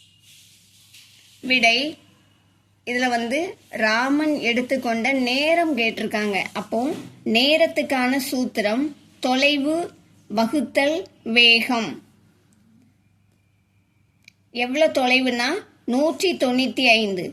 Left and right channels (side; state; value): both; identical; correlation 1.00